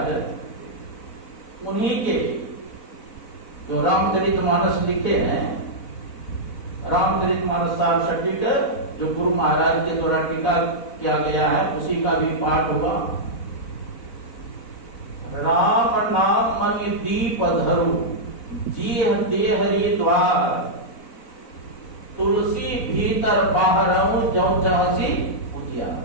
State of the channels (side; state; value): right; late; 4.0 ms